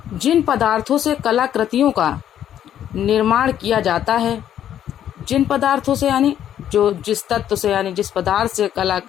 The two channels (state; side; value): quieter; right; 10.5 dB